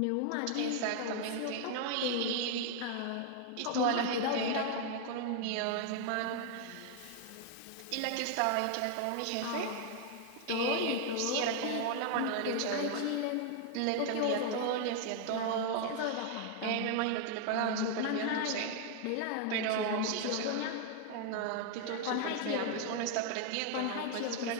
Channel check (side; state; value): both; different; correlation 0.00